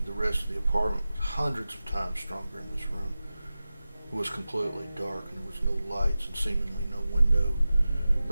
the rest of the apartment was hundreds of times stronger in this room. It was completely dark and there was no lights and seemingly no window,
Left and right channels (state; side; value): inverted; both; correlation -0.95